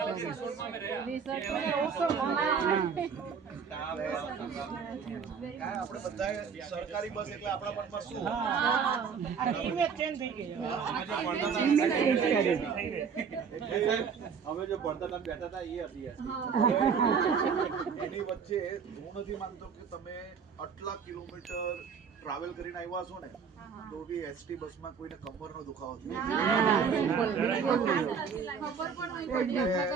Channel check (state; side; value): quieter; left; 6.4 dB